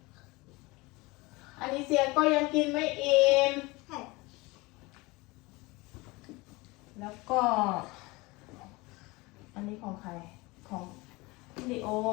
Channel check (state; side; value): quieter; right; 23.3 dB